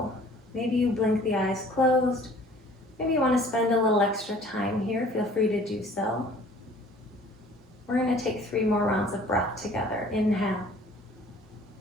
Maybe you blink the eyes closed. Maybe you want to spend a little extra time here. Feel free to do so. We're going to take 3 more rounds of breath together. Inhale.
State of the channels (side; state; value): both; normal; correlation 0.52